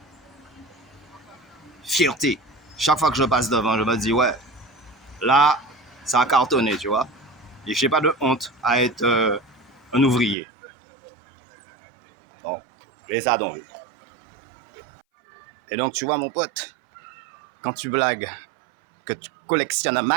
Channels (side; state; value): left; drops out; at 10.4 s